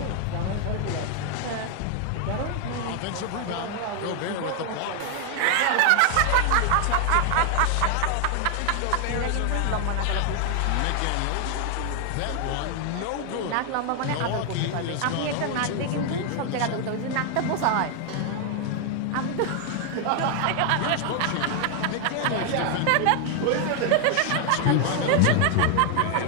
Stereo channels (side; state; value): both; different; correlation 0.00